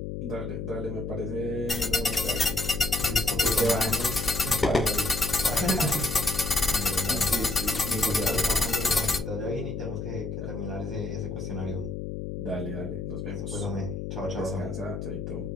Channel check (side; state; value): left; noise; hum, 5 dB below the sound